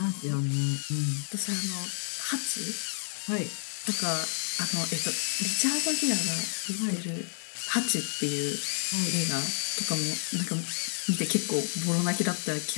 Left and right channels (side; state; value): right; silent; digital silence